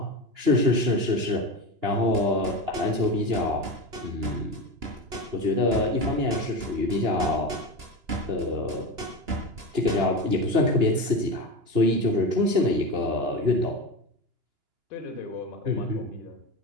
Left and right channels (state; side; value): late; left; 2.9 ms